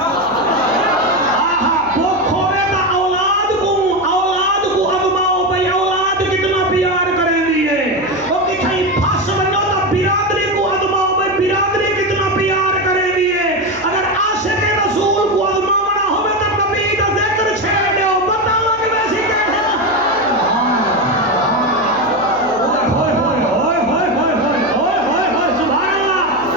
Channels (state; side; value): noise; left; hum, 24 dB below the sound